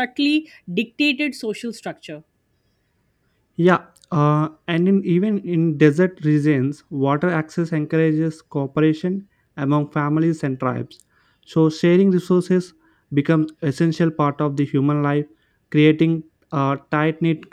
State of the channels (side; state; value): both; identical; correlation 1.00